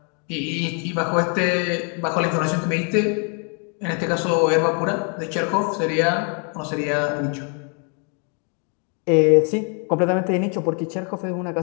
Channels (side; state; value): right; quieter; 39.2 dB